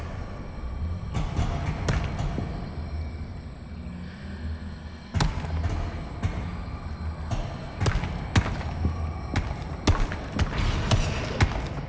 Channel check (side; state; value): both; identical; correlation 1.00